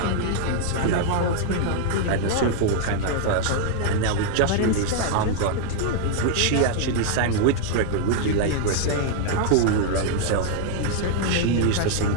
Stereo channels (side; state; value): both; different; correlation 0.00